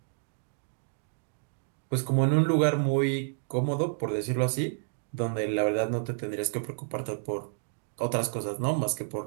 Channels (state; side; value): silent; left; digital silence